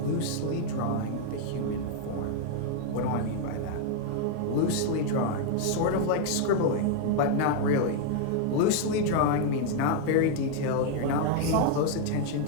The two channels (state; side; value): different; both; correlation 0.00